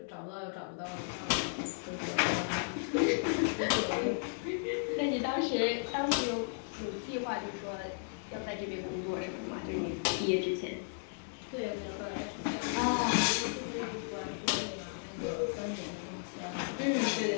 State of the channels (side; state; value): right; silent; 55 dB below the other